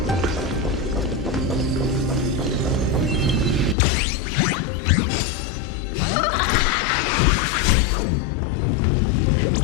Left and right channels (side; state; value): right; drops out; at 3.8 s